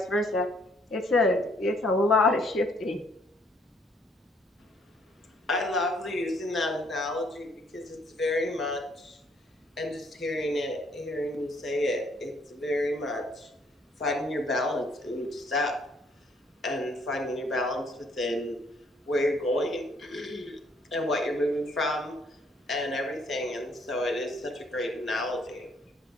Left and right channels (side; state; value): both; normal; correlation 0.66